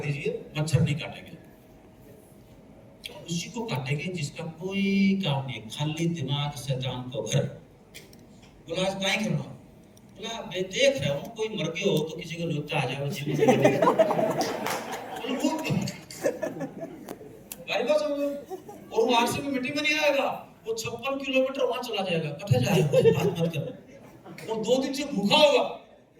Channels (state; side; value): identical; both; correlation 1.00